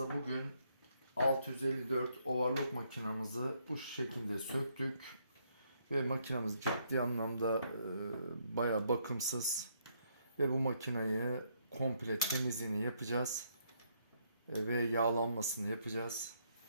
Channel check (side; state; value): both; inverted; correlation -0.72